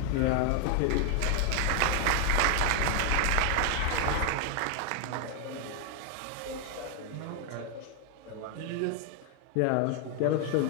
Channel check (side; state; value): both; different; correlation 0.00